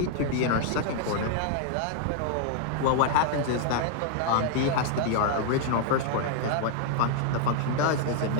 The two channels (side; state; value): both; different; correlation 0.00